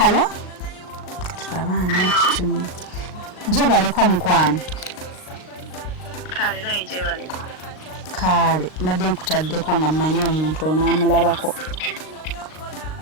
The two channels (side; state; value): right; late; 38 ms